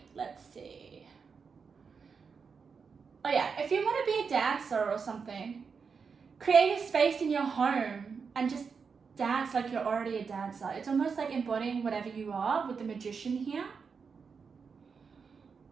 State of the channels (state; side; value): quieter; left; 5.6 dB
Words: let's see. Oh yeah, if you want to be a dancer or something, create a space in your home and just dance like you're already a dancer. It's almost like embodying whatever you are with the Magician here.